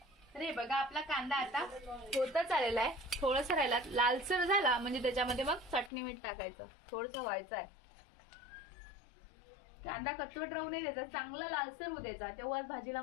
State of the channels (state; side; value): drops out; right; at 5.9 s